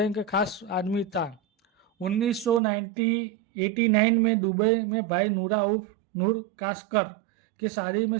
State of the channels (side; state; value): left; drops out; at 2.6 s